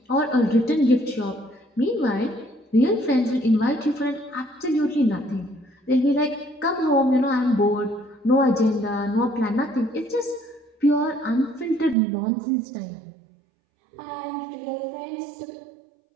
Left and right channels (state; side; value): drops out; left; at 12.0 s